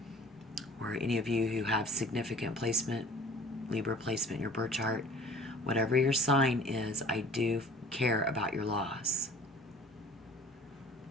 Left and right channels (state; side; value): normal; both; correlation 0.48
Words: or any of you who have significant placement, Libra placement in your birth chart, whatever your sign is, I do care about your loss.